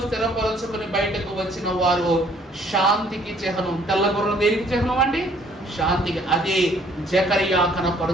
స్థిరపరచుకుని బయటకు వచ్చిన వారు శాంతికి చిహ్నం. తెల్ల గుర్రం దేనికి చిహ్నం అండి? శాంతికి. అదే జకరియా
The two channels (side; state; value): both; normal; correlation 0.61